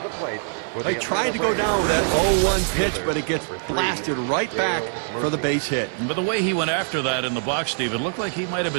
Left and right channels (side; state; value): left; silent; 61 dB below the other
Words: I tried to go down with that 0-1 pitch, but it gets blasted right back for the base hit. But the way he went after that in the box, Steve, it looked like he might have